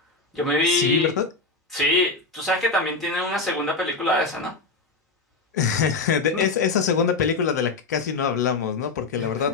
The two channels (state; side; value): quieter; right; 3.7 dB